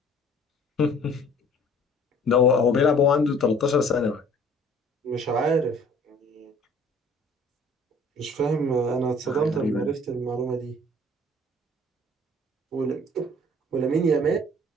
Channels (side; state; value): both; normal; correlation 0.53